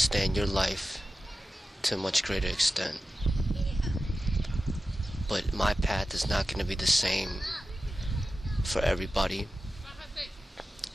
your life to a much greater extent. But my path is not going to be the same for everybody,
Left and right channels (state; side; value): normal; both; correlation 0.93